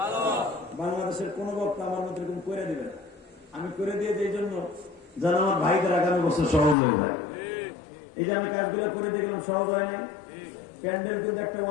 বাংলাদেশের কোন বক্তা আমার মতো এরকম করে দিবেন, আমি করে দিয়ে এই জন্য যেন আমার ভাইদের আগামী বছর সহজ হয়ে যায়। এই যে আমি কাজগুলো করে দেখলাম, সহজ হয় নাই। প্যান্ডেল কিন্তু একটা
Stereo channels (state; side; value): drops out; right; at 6.8 s